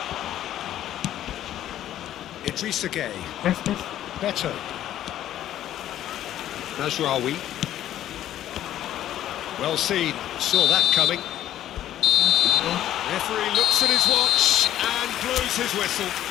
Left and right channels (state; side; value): quieter; right; 12.2 dB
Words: Idrissa Gueye. Tes. Better. Nasraoui. Well seen. Saw that coming. Referee looks at his watch and blows his whistle.